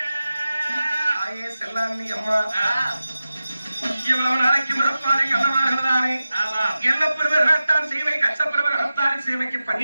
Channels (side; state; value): both; inverted; correlation -0.94